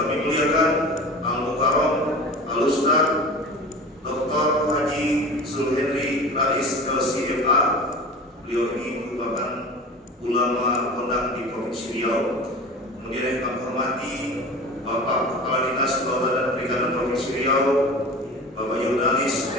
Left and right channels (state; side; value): normal; both; correlation 0.36